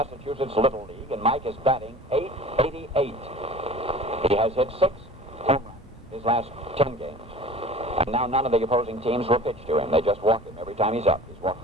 Little League, and Mike is batting .888. He has hit 6 home runs his last 10 games. And now none of the opposing teams will pitch to him. They just walk him every time he's up. He's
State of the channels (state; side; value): normal; both; correlation 0.42